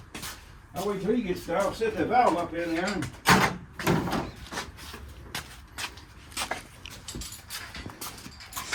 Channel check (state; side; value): identical; both; correlation 1.00